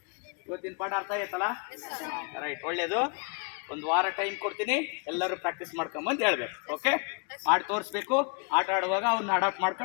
ಇವತ್ತಿನ ಪಾಠ ಅರ್ಥ ಆಯ್ತಲ್ಲ? ರೈಟ್, ಒಳ್ಳೇದು. ಒಂದು ವಾರ ಟೈಮ್ ಕೊಡ್ತೀನಿ, ಎಲ್ಲರೂ ಪ್ರಾಕ್ಟೀಸ್ ಮಾಡ್ಕೊಂಬಂದು ಹೇಳ್ಬೇಕು. ಓಕೆ, ಮಾಡಿ ತೋರಿಸ್ಬೇಕು. ಆಟ ಆಡುವಾಗ ಅವನ್ನ ಅಡಾಪ್ಟ್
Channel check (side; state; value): right; quieter; 34.4 dB